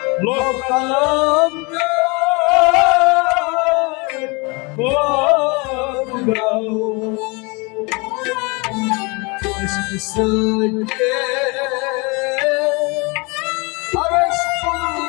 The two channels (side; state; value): right; quieter; 28.5 dB